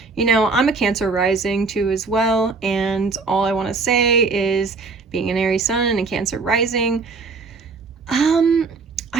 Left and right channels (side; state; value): left; quieter; 4.2 dB